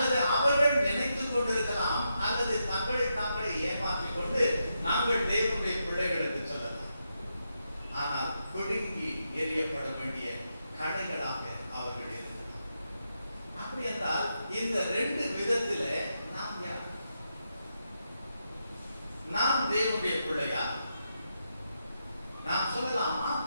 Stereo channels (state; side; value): inverted; both; correlation -0.84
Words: அவர்கள் நினைத்துக் கொண்டிருக்கலாம், அல்லது தங்களை ஏமாற்றிக் கொண்டு நாங்கள் தேவனுடைய பிள்ளைகள் என்று சொல்லலாம். ஆனால் பிடுங்கி எறியப்பட வேண்டிய கடைகளாக அவர்கள் இருக்கிறார். அப்படி என்றால் இந்த ரெண்டு விதத்தில நாம் யார்? நாம் தேவனுடைய பிள்ளையா? நாம் சொல்லலாமா